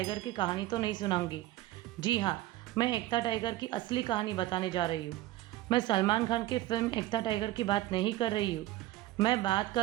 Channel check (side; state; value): left; quieter; 15.9 dB